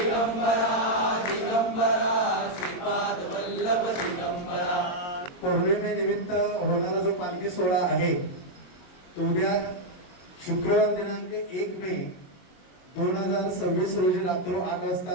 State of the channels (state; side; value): late; right; 22 ms